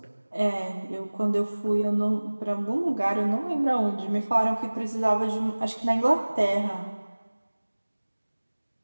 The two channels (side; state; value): both; inverted; correlation -1.00